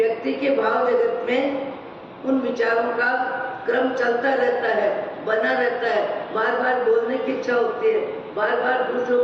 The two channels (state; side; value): identical; both; correlation 1.00